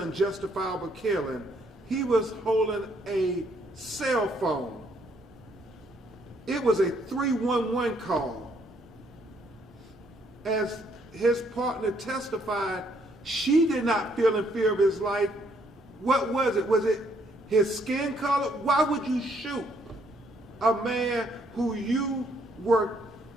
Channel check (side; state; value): both; normal; correlation 0.69